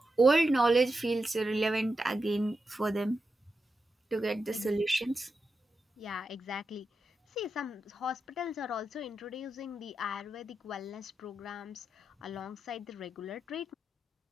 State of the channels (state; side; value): normal; both; correlation 0.88